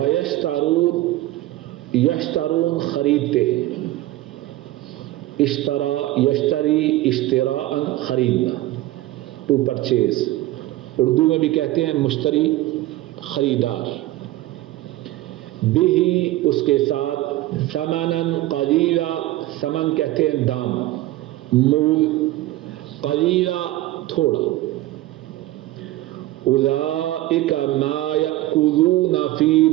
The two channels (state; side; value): quieter; left; 16.3 dB